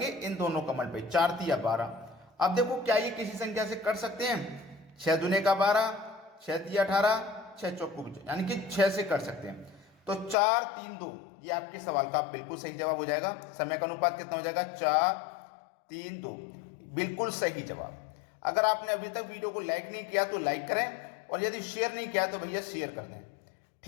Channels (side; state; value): right; drops out; at 10.4 s